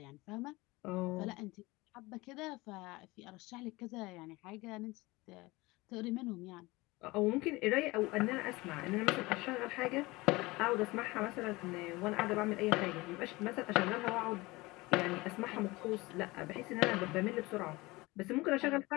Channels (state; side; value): quieter; right; 22.0 dB